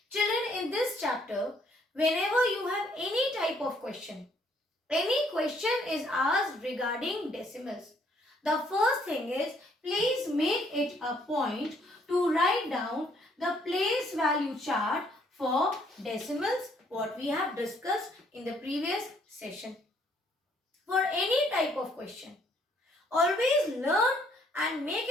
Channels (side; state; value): both; normal; correlation 0.66